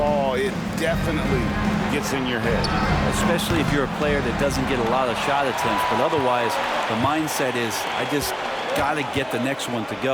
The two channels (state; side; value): identical; both; correlation 1.00